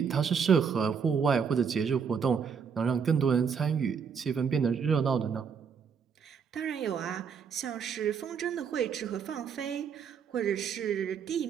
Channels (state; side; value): quieter; left; 6.6 dB